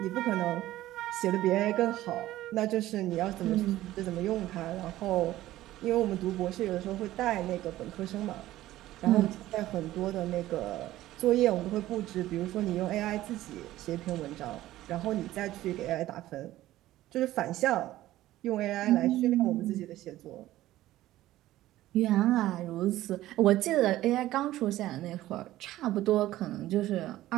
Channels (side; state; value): left; quieter; 15.1 dB